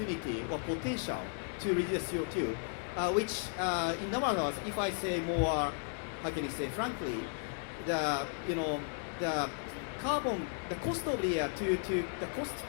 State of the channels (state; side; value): silent; right; 54 dB below the other